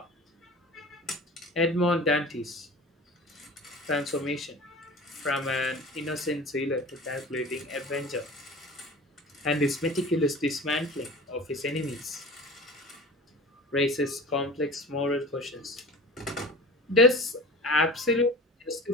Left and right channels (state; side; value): normal; both; correlation 0.37